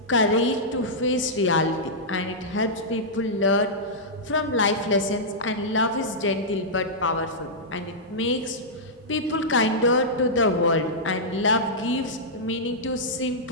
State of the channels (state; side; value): normal; both; correlation -0.11